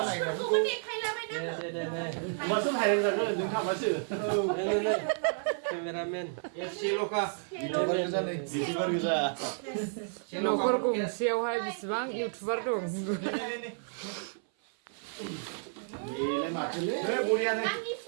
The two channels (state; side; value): silent; left; 57 dB below the other